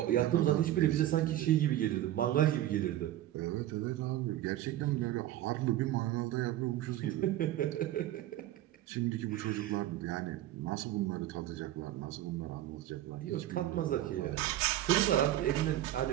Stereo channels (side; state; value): left; quieter; 13.6 dB